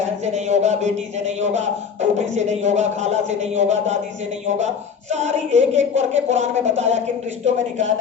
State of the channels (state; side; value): quieter; right; 6.5 dB